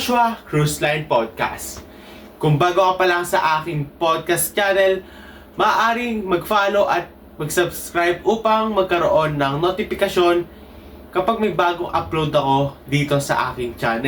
Cruise Line Podcast. Kung bago ka pa lang sa aking podcast channel, maaaring mag-follow at mag-subscribe upang magkaroon ng notifikasyon kapag may bagong upload ako dito sa aking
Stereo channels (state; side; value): identical; both; correlation 1.00